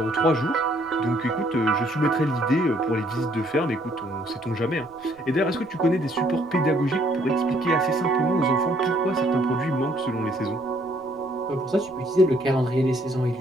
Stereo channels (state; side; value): noise; right; rumble, 28 dB below the sound